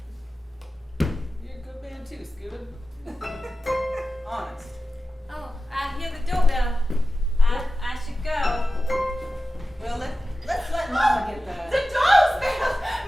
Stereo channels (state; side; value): normal; both; correlation 0.94